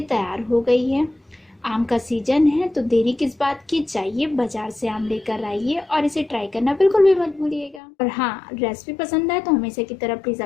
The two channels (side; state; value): right; drops out; at 7.8 s